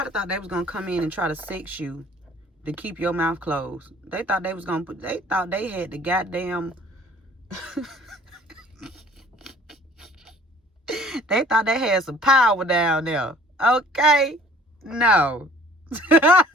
thought they was gonna come in and try to sex you to keep your mouth closed. They thought they was gonna they thought they had the goddamn they thought they had some power down there. Okay? No.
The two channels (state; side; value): normal; both; correlation 0.53